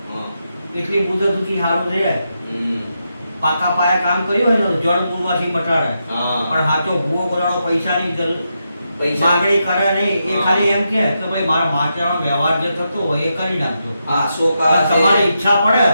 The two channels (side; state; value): both; inverted; correlation -0.85